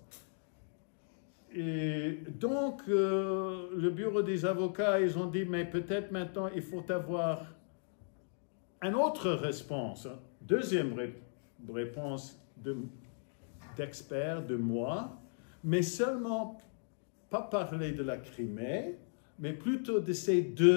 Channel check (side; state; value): right; silent; digital silence